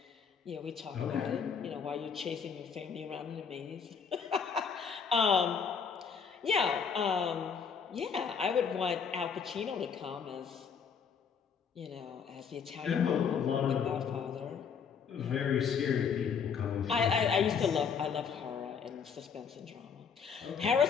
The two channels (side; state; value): right; quieter; 6.5 dB